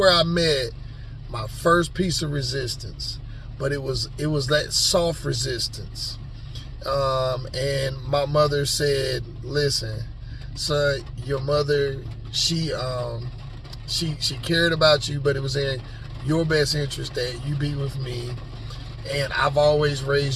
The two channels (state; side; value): identical; both; correlation 1.00